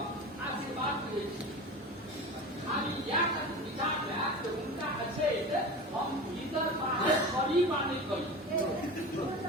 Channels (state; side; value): normal; both; correlation 0.31